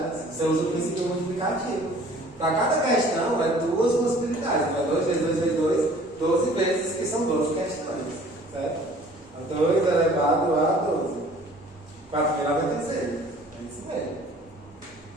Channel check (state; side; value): normal; both; correlation 0.51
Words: Você usa o princípio multiplicativo. Para cada questão é 2 possibilidades, então 2 vezes 2 vezes 2, 12 vezes, que são 12 questões, certo? 2 elevado a 12. 4.096. É isso mesmo.